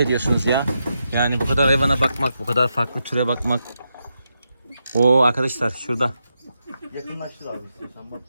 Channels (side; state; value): both; inverted; correlation -0.85